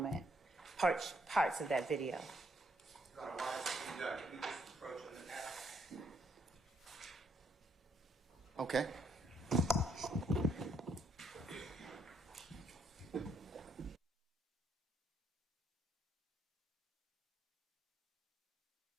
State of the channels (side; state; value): both; normal; correlation 0.73